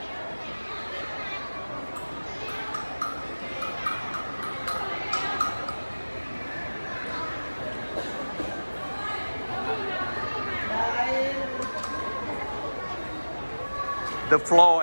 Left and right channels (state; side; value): inverted; both; correlation -1.00